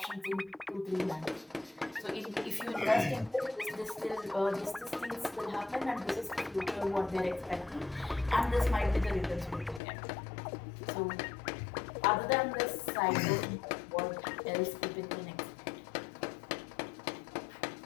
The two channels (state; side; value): drops out; right; at 9.8 s